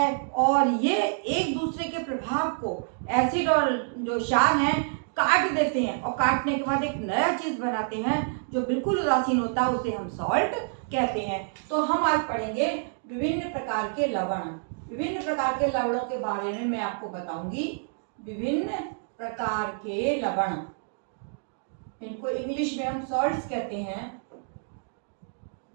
और ये एक दूसरे के प्रभाव को एसिड और जो क्षार हैं काट देते हैं और काटने के बाद एक नया चीज बनाते हैं जो बिल्कुल उदासीन होता है, उसे हम सॉल्ट कहते हैं। तो हम आज पढ़ेंगे विभिन्न प्रकार के लवण। विभिन्न प्रकार के लवणों के बारे में मैं आपको बताऊंगी। विभिन्न प्रकार के लवण, इनको इंग्लिश में हम सॉल्ट्स कहते हैं।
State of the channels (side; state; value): left; silent; digital silence